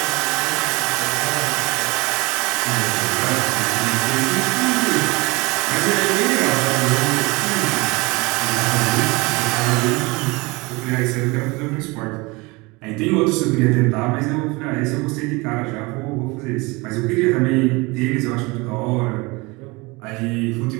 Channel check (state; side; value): quieter; left; 25.0 dB